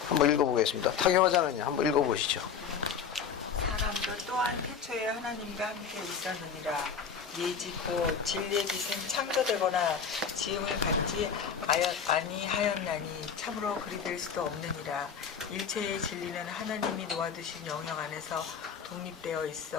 한번 읽어보겠습니다. 타교화자는 한번 읽어보시죠. 사람도 또한 태초에 하나님과 함께 있었느니라. 예지 곧 진리의 빛은 창조되거나 지음을 받지 아니하였나니 참으로 그리 될 수도 없느니라. 일체의 진리는 하나님이 놓아두신 영역 안에서 독립되어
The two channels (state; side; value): quieter; right; 6.7 dB